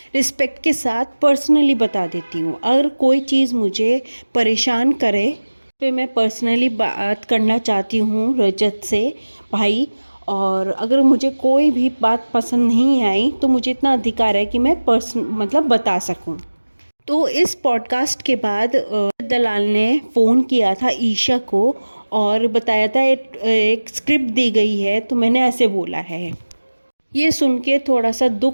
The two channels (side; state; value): both; inverted; correlation -1.00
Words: रिस्पेक्ट के साथ पर्सनली बता देती हूँ। अगर कोई चीज़ मुझे परेशान करे तो मैं पर्सनली बात करना चाहती हूँ रजत से भाई, और अगर मुझे कोई भी बात पसंद नहीं आई तो मुझे इतना अधिकार है कि मैं मतलब बता सकूँ। तो इस पॉडकास्ट के बाद दलाल ने फ़ोन किया था ईशा को और बताया था एक स्क्रिप्ट दी गई है, तो मैंने ऐसे बोला है। ये सुन के थोड़ा सा